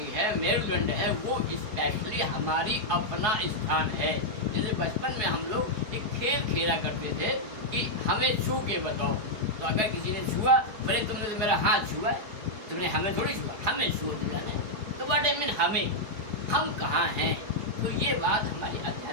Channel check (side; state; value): left; late; 4.8 ms